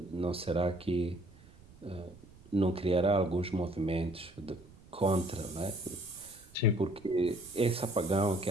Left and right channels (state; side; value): noise; right; rumble, 23 dB below the sound